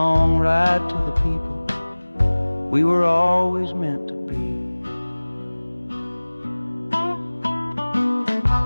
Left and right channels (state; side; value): inverted; both; correlation -1.00